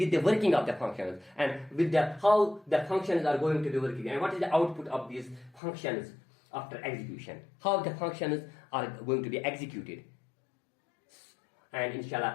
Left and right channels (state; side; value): drops out; right; at 5.6 s